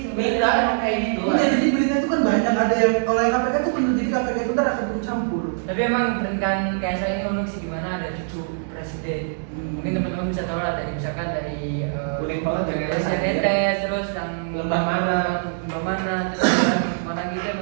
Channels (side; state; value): left; silent; digital silence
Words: Beda emang kayak gitu. iya, jadi berita itu kan banyak, ada yang kalau yang KPK itu benar, jadi KPK itu ntar akan ikut campur. Tapi emang pernikahan Kaisang ini unik sih, gimana ada cucu presiden. Mungkin teman-teman bisa tahu lah dari misalkan dari Unik banget Janetes. Janetes, terus yang Lembah Mana. terus yang mana gitu